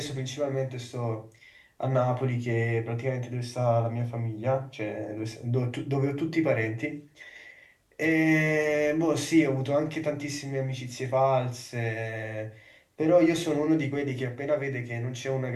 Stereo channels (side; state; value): both; identical; correlation 1.00